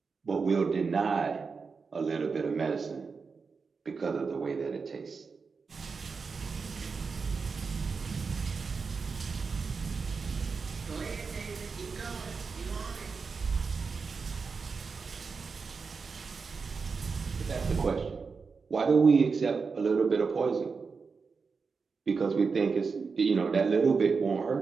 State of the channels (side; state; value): left; quieter; 5.0 dB